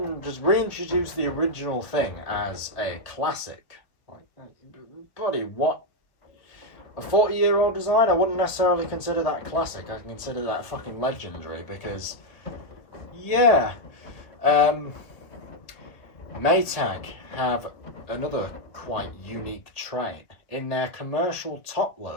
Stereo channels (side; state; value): right; late; 1.8 ms